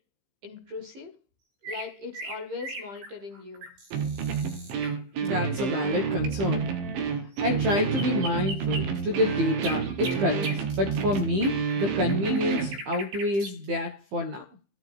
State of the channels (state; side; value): late; left; 15 ms